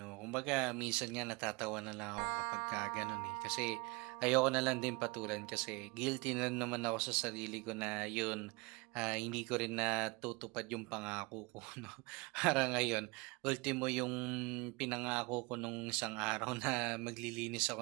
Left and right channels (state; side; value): quieter; left; 26.0 dB